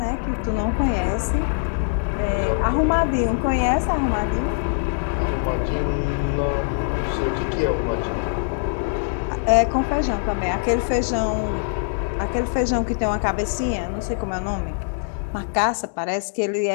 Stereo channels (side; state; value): right; silent; 64 dB below the other